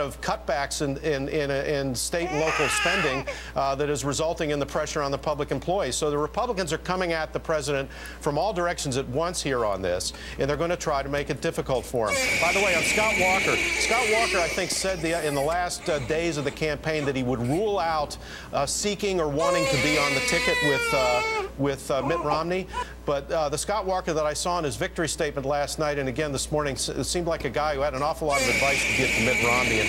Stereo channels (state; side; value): identical; both; correlation 1.00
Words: of cutbacks in state and local spending that is resulting in the pressure on the public employees. So the Republicans are coming at the president from all directions at once here on this, and they're going to try to make it difficult for him. By the way, on Scott Walker, I think, said in the last days of the campaign that he would rule out seeking or wanting to be on the ticket with Mitt Romney. But the Scott Walker that I saw in his victory statement last night and again this morning seemed like a guy who had an awful lot of advice to give to Mitt Romney and